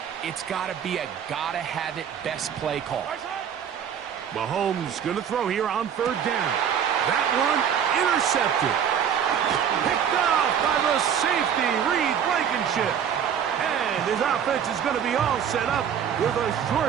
it's got to be a gotta-have-it best play call. Mahomes going to throw here on third down. That one intercepted. Picked off by the safety, Reed Blankenship. And his offense is going to be all set up with a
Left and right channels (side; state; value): left; quieter; 8.4 dB